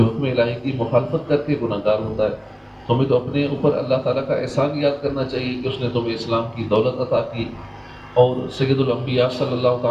حکم الہی کی مخالفت کر کے گناہ گار ہوتا ہے. تمہیں تو اپنے اوپر اللہ تعالیٰ کا احسان یاد کرنا چاہیے کہ اس نے تمہیں اسلام کی دولت عطا کی اور سید الانبیاء صلی اللہ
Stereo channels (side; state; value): both; identical; correlation 1.00